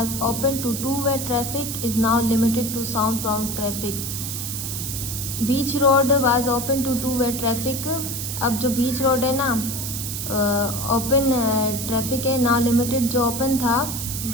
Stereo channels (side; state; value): right; noise; hiss, 5 dB below the sound